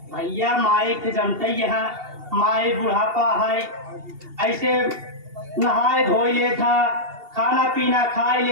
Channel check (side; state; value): left; late; 2.8 ms